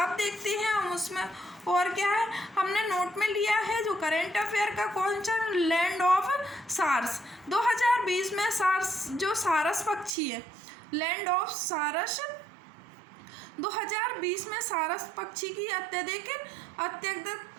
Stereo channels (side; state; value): left; drops out; at 10.1 s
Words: अब देखते हैं हम उसमें और क्या है, हमने नोट में लिया है जो करंट अफेयर का क्वेश्चन, लैंड ऑफ सारस 2020 में जो सारस पक्षी है, लैंड ऑफ सारस 2020 में सारस पक्षी की अत्यधिक